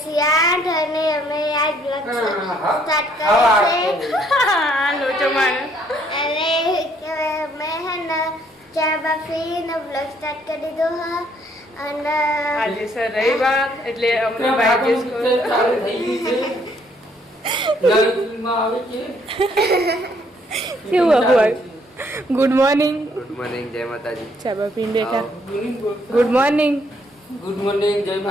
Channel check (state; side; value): normal; both; correlation 0.67